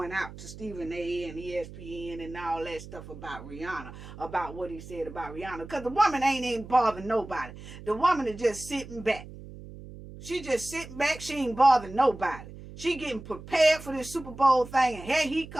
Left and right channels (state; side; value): noise; right; hum, 15 dB below the sound